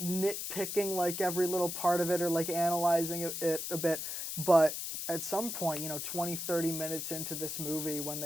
nitpicking every little part of it or analyzing it a bit. But at some point, 20, 30 minutes into this movie, when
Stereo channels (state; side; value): noise; left; hiss, 4 dB below the sound